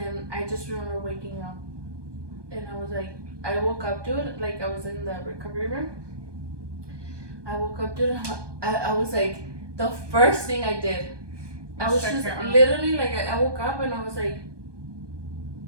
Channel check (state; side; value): late; left; 1.2 ms